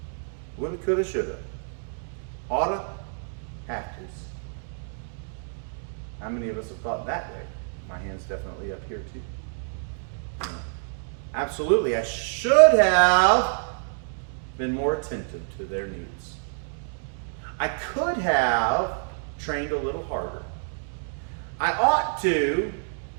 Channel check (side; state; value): left; silent; digital silence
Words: Would have, could have, should have. Oughta, have to's. How many of us have thought that way? My hand's definitely up here too. You know, absolutely, I should have been more attentive to their needs. I could have trained a little harder. I ought to